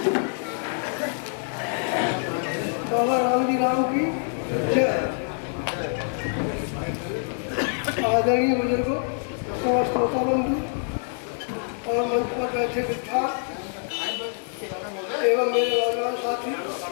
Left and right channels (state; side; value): silent; right; 60 dB below the other